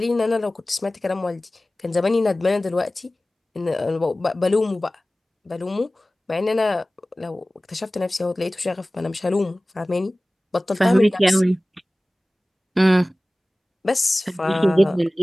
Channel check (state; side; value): normal; both; correlation 0.97